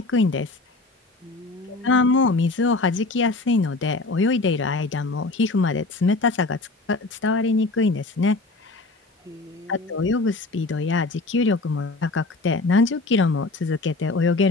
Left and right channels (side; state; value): right; quieter; 3.3 dB